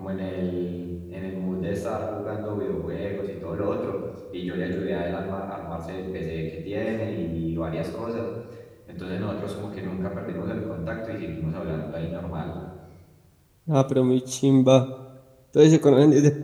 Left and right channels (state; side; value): identical; both; correlation 1.00